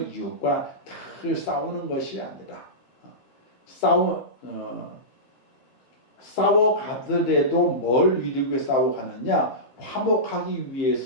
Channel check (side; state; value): right; late; 15 ms